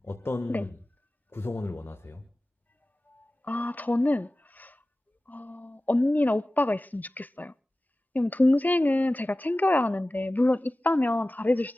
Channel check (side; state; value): both; normal; correlation 0.96